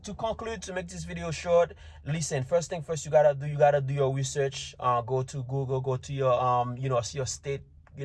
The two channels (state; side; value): identical; both; correlation 1.00